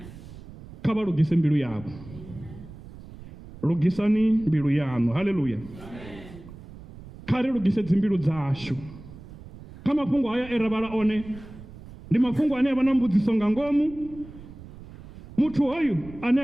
Kha vha lugise mbilu yavho. Lugisani mbilu yaṋu. Haleluya. Kha ri lugise dzimbilu dzashu. Kha mafhungo haya e ra vhala one ndi mafhungo ane a vha na mbudziso nga ngomu. Muthu hoyu ane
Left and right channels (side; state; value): right; noise; rumble, 17 dB below the sound